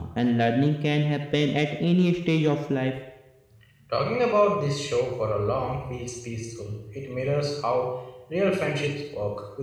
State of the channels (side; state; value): both; identical; correlation 1.00